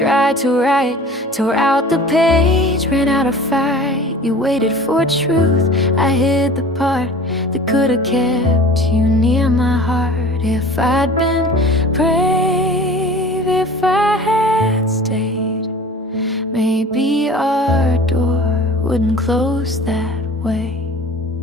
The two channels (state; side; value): normal; both; correlation 0.42